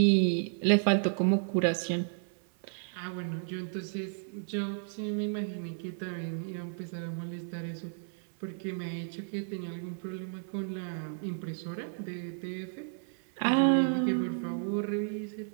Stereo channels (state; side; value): silent; left; 56 dB below the other